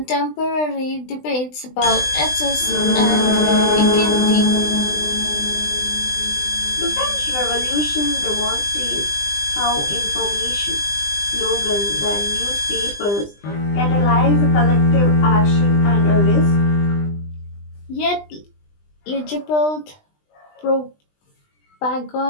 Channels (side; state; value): right; late; 20 ms